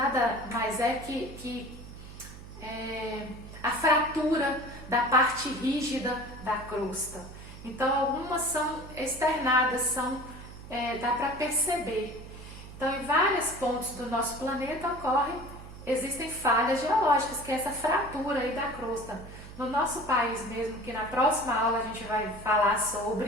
mais é que a fratura da parte rígida da crosta. Então, algumas são externadas, dá para perceber. Então, em vários pontos do nosso planeta existem falhas geológicas, que é essa fratura aí da crosta. No nosso país mesmo, que na próxima aula a gente vai falar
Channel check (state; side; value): noise; right; hum, 15 dB below the sound